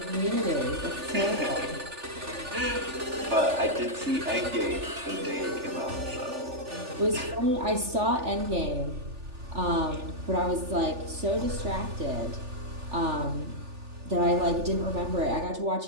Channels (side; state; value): left; late; 3.4 ms